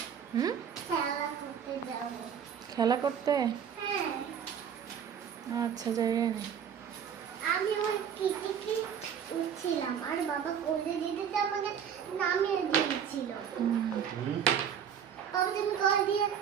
হুম, খেলা করতে? আচ্ছা, যাই না। আমি ওই কিটিকি উঠছিলাম আর বাবা কোলে যেতে আমাকে নামিয়ে দিয়েছিল। বাবা তুমি কল দিয়ে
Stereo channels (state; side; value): quieter; left; 8.1 dB